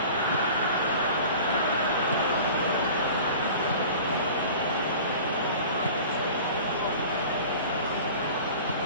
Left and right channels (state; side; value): inverted; both; correlation -0.41